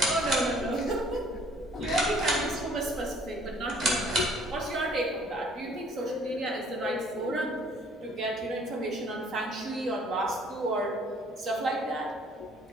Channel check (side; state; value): both; normal; correlation 0.58